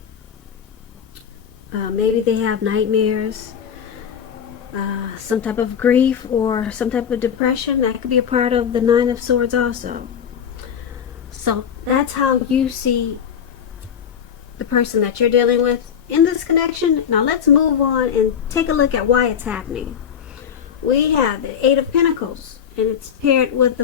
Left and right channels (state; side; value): quieter; right; 8.0 dB